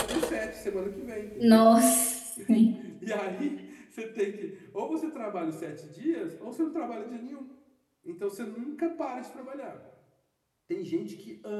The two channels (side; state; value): both; identical; correlation 1.00